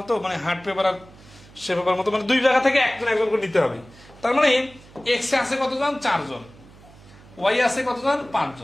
মানে হার্ড পেপার আর সে পেপার মতো, মানে দুই জায়গা থেকে একজন একজন করে নিতে হবে। তার মানে এক্স এ আছে কতজন, 4 জন, ওয়াই আছে কতজন, 5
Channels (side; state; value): right; noise; hum, 23 dB below the sound